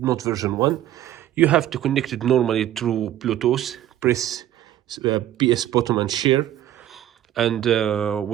version 1. You have to connect it normally through Bluetooth. Press PS button and share. And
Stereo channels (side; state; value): left; quieter; 12.4 dB